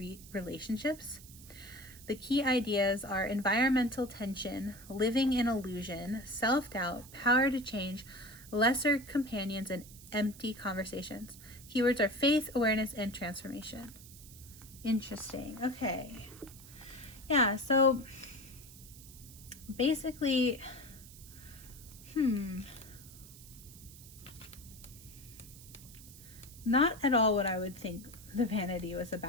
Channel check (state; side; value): noise; right; hiss, 18 dB below the sound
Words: relationships? The key ideas are environmental tension, living in illusion, self-doubt, power to change, lesser companions, and empty conversations. Keywords are faith, awareness, and transformation. Interesting. Okay. Yeah, so basically, not at all what I would think the vanity was